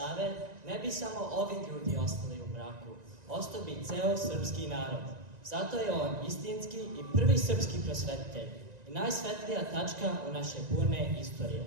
ne bi samo ovi ljudi ostali u mraku. Ostao bi ceo srpski narod. Zato je on istinski i prvi srpski prosvetitelj i najsvetlija tačka u naše burne istorije.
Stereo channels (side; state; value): left; late; 1.9 ms